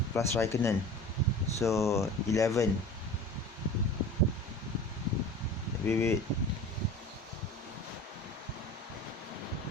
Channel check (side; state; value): both; normal; correlation 0.38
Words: plus Raikkonen. So 11. Wait.